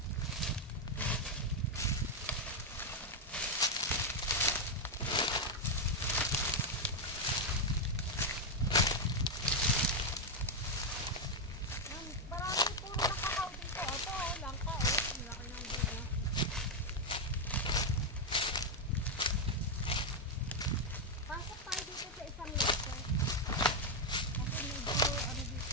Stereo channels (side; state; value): both; normal; correlation 0.02